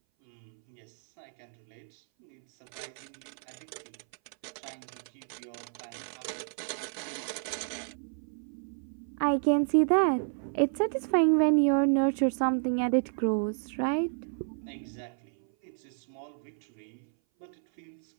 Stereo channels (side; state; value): left; silent; 57 dB below the other